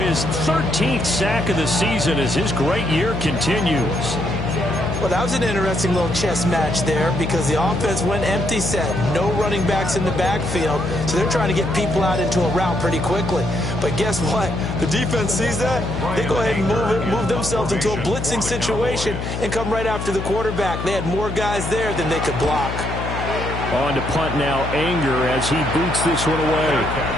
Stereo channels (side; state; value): left; noise; hum, 5 dB below the sound